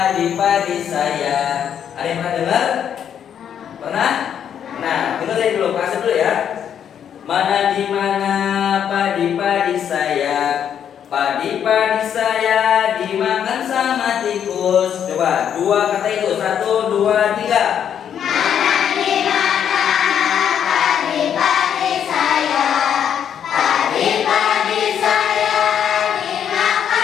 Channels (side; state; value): right; quieter; 8.8 dB